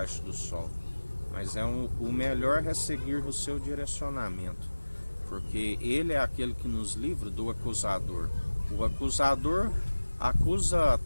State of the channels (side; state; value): both; inverted; correlation -1.00